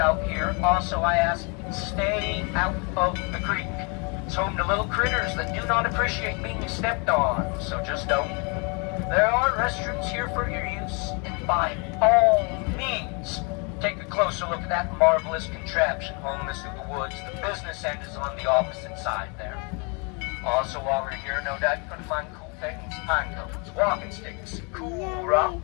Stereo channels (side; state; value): right; quieter; 33.4 dB